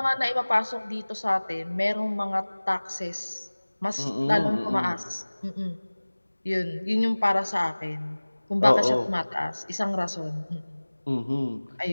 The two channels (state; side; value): inverted; both; correlation -1.00